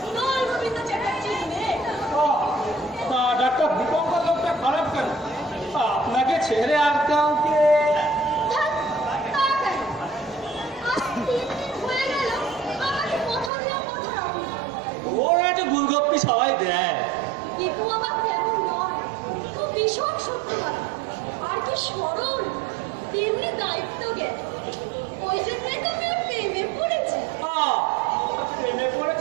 Dol Gobinda চ্যাটার্জির মেয়ে। তা ডাক্তার দীপঙ্কর লোকটা খারাপ কেন? আপনাকে ছেড়ে আর কাউকে? ধ্যাৎ, তা কেন? আজ 3 দিন হয়ে গেল, আমাকে কথা দিয়েও কথা রাখুন। ওরা একটা গুলগপ্পি সবাই দেয়। দীপু আমার তেমন নয়, ও ভীষণ সত্যবাদী, আর কি সরল, তেমনি দায়িত্ব জ্ঞান। ওই জন্যই তো আমি ওর প্রেমে পড়েছি। প্রেমে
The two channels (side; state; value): left; drops out; at 13.5 s